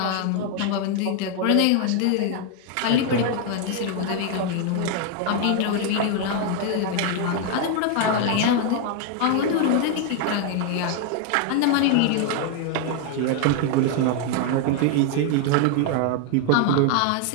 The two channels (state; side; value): different; both; correlation 0.01